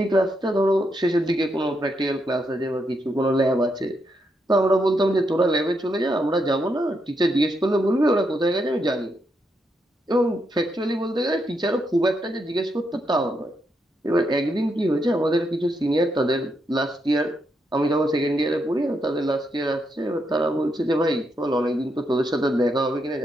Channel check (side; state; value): both; normal; correlation 0.80